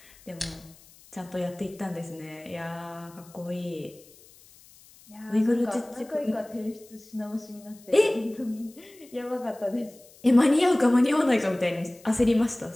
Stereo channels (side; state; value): left; noise; hiss, 25 dB below the sound